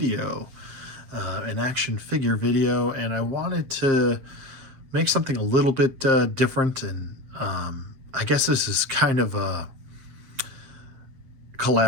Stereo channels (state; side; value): late; left; 7.6 ms